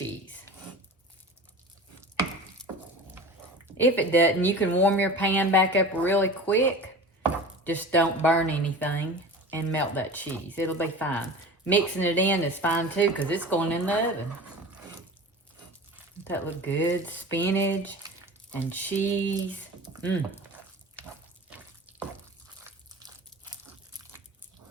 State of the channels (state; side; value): normal; both; correlation 0.36